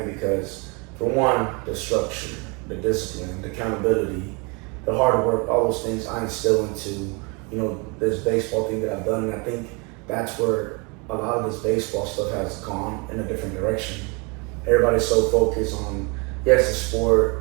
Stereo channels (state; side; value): quieter; left; 30.7 dB